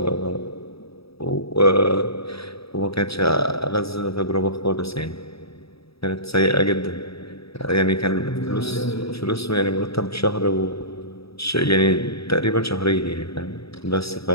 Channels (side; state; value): right; late; 0.77 ms